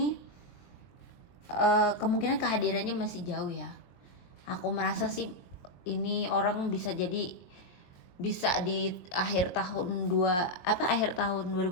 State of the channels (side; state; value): right; late; 22 ms